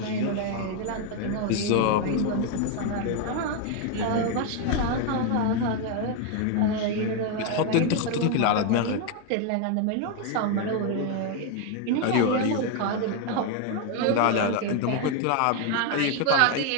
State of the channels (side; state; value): both; different; correlation 0.01